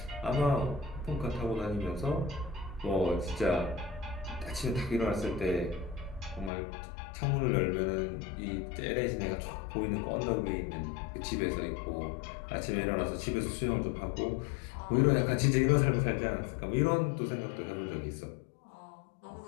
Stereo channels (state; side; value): drops out; right; at 6.5 s